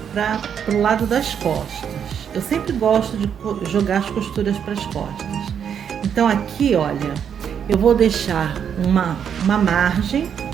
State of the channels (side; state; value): left; quieter; 8.0 dB